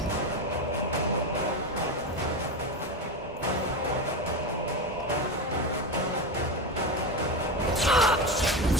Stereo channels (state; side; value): normal; both; correlation 0.17